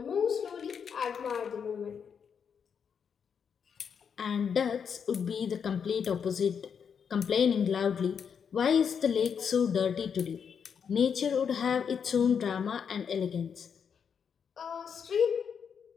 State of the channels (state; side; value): quieter; right; 7.0 dB